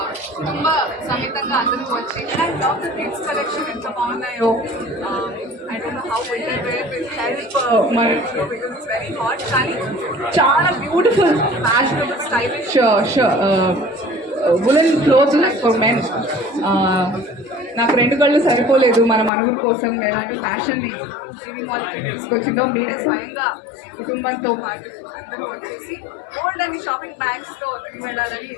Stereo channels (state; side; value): drops out; right; at 19.3 s